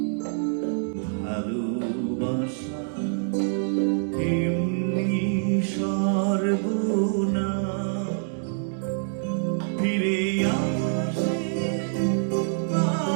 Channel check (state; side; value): silent; left; digital silence